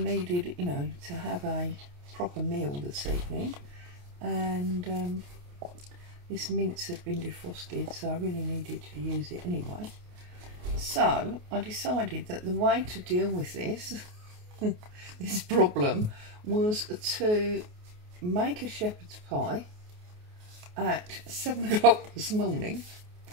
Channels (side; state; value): left; late; 28 ms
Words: you know, to have a proper meal this evening. And this mince had been defrosted, so I really needed to use it anyway. So I decided that the way to deal with this this problem was to make a shepherd's pie at 7 o'clock this morning,